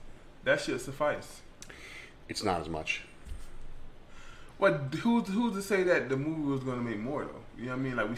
that should suffice. It's not as much. What? Who's to say that the movie was going to make more though? You know what I mean? Like we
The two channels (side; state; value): both; identical; correlation 1.00